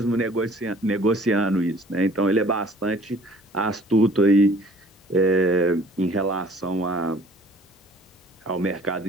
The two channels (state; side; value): normal; both; correlation 0.53